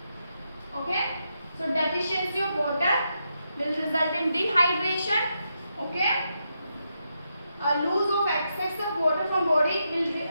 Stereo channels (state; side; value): inverted; both; correlation -0.83